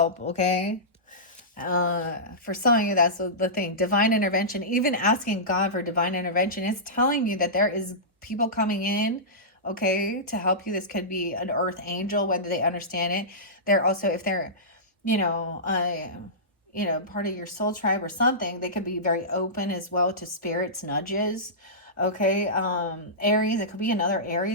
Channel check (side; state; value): both; normal; correlation -0.18